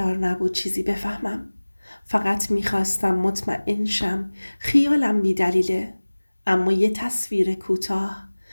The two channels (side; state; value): both; inverted; correlation -1.00